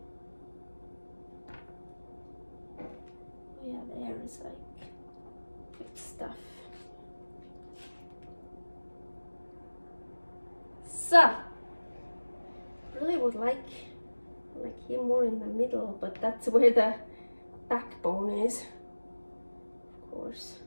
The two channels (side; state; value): both; inverted; correlation -1.00